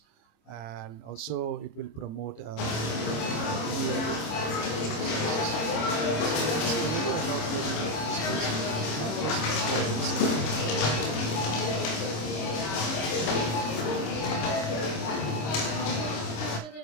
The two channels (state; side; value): late; right; 26 ms